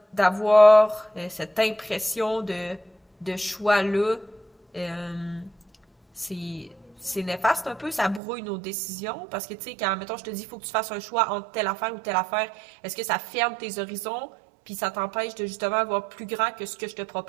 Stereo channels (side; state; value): left; drops out; at 8.2 s